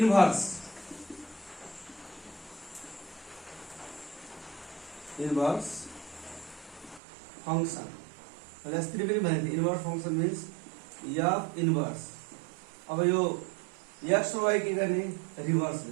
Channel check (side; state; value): left; drops out; at 7.0 s